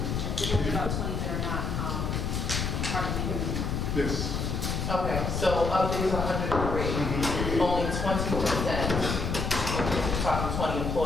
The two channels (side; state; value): left; noise; rumble, 1 dB below the sound